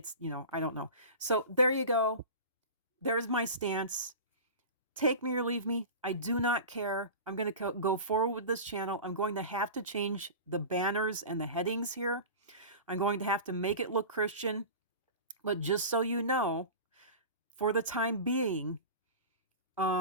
don't know. So there you go. There's my stance. Take me or leave me. I do not care. I'm going to go forward with this channel. I'm going to have to change the banners and the headings here. I'm going to have to make it look Christian. But just so you know, for the time being,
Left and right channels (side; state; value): both; inverted; correlation -0.33